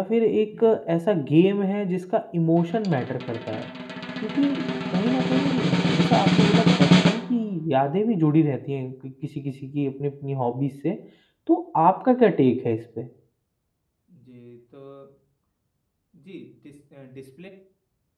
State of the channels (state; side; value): identical; both; correlation 1.00